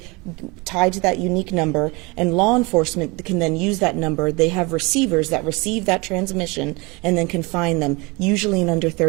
tied to that unique number, and law enforcement can then use that number. They have receivers that receive that transmission and then can find them, usually in under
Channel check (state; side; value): quieter; left; 26.2 dB